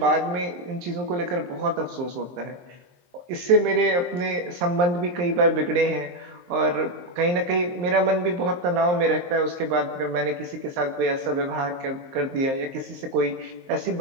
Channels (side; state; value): left; late; 23 ms